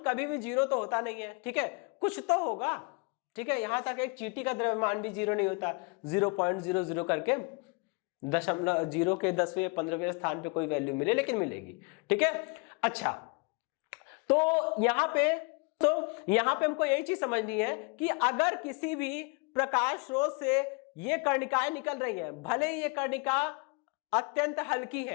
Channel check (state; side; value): quieter; right; 31.6 dB